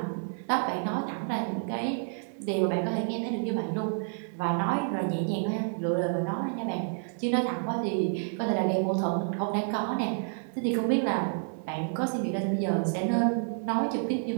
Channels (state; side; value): silent; left; 58 dB below the other